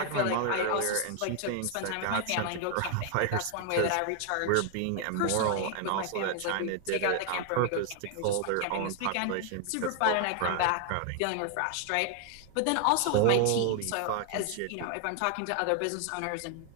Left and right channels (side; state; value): both; different; correlation 0.00